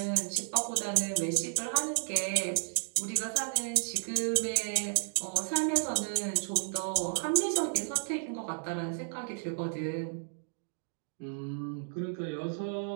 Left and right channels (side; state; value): left; silent; digital silence